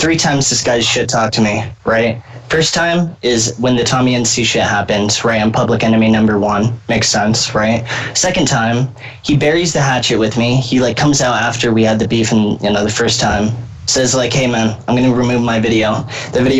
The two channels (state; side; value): identical; both; correlation 1.00